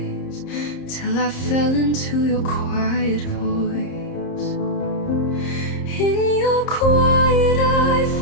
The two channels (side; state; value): right; late; 30 ms